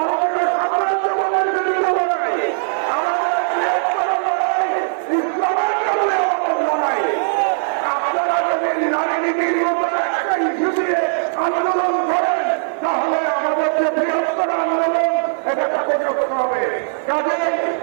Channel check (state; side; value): silent; left; digital silence